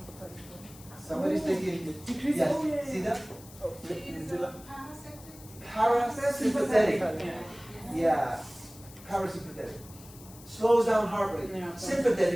Somebody's thinking, Decrease. yes, Oh, yeah, see yeah. that? Oh, Is medulla. parasympathetic? Parasympathetic. Yeah. Yeah, parasympathetic. Slows down heart rate. Yeah.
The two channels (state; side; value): noise; left; hiss, 20 dB below the sound